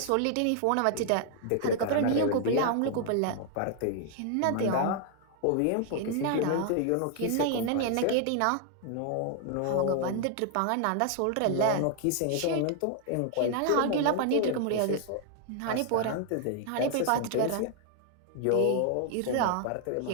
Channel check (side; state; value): both; different; correlation 0.00